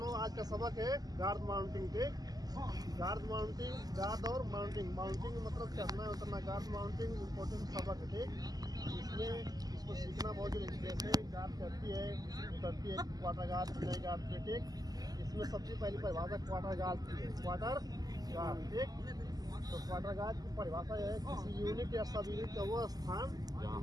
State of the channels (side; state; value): left; late; 0.18 ms